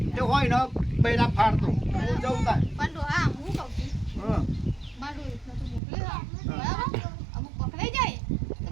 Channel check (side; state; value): left; drops out; at 5.8 s